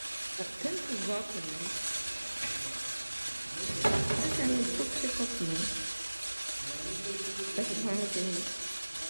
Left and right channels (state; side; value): inverted; both; correlation -1.00